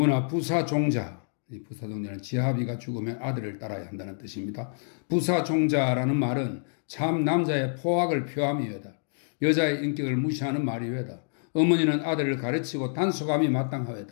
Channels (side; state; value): right; silent; digital silence